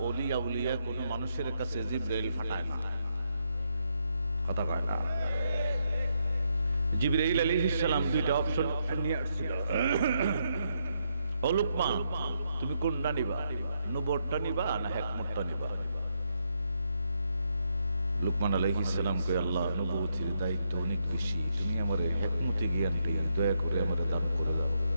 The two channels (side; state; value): both; inverted; correlation -0.79